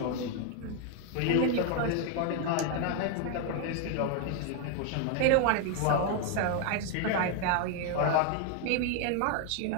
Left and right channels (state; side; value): different; both; correlation 0.00